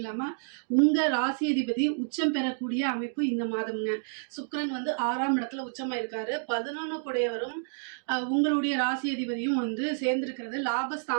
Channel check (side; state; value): left; silent; digital silence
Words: உங்க ராசி அதிபதி உச்சம் பெறக்கூடிய அமைப்பு இந்த மாதம்ங்க. சுக்கிரன் 6ஆம் இடத்துல உச்சமா இருக்காரு. 11 கூடையவரும் உங்களுடைய ராசி அதிபதியும் சேர்ந்திருக்கிறது.